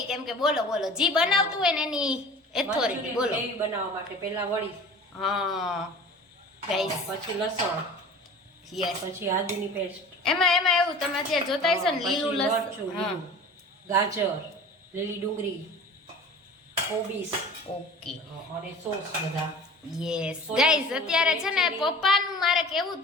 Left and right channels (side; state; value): both; normal; correlation 0.41